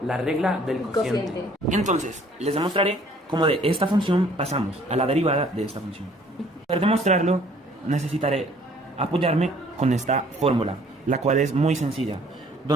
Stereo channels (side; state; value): both; normal; correlation 0.58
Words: la regla del cociente. Entonces, les demostraré cómo de esta función pasamos a la derivada de esta función. Para demostrarlo, necesitaré apoyarme con esta fórmula, la cual es muy sencilla,